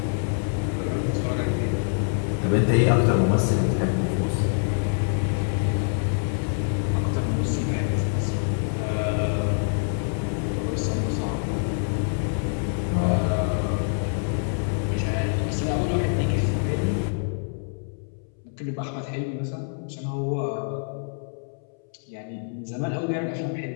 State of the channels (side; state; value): right; silent; 61 dB below the other